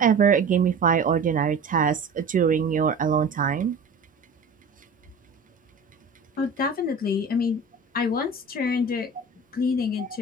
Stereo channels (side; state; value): left; quieter; 3.5 dB